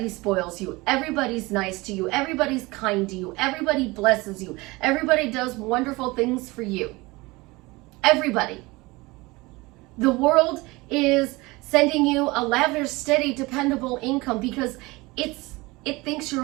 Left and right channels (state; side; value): quieter; left; 22.7 dB